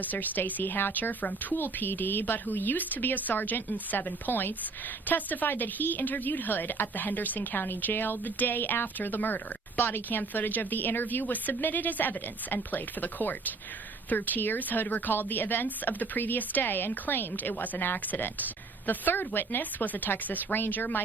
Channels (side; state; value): left; quieter; 4.1 dB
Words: Stacy Hatcher from Toole PD, but who used to be a sergeant in 7 Points, testified that he interviewed Hood at the Henderson County Jail the day after the murder. Body cam footage of the interview was submitted as evidence and played for the court. Through tears, Hood recalled the events of the previous day and claimed it was an accident. The third witness was a Texas Ranger,